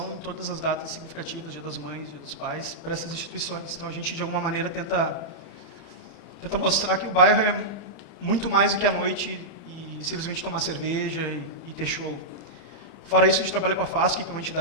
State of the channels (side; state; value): right; late; 30 ms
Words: em todas as datas significativas, Dia das Mães, Dia dos Pais, para essas instituições. Então a gente, de alguma maneira, tenta mostrar que o bairro é muito mais do que a noite e simplesmente tomar cerveja e ter show. Fora isso, a gente trabalha com a FASC, que é uma